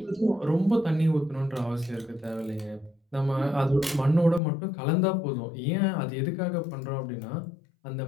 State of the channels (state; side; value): drops out; right; at 4.4 s